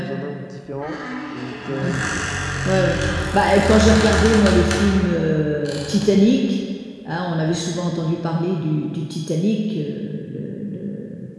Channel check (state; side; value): identical; both; correlation 1.00